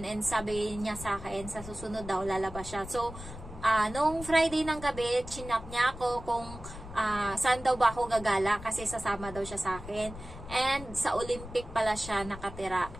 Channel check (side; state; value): left; noise; rumble, 13 dB below the sound